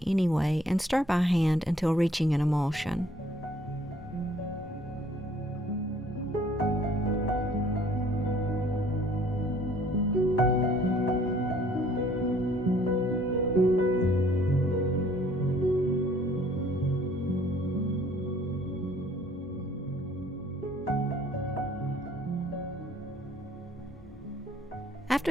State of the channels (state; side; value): normal; both; correlation 0.58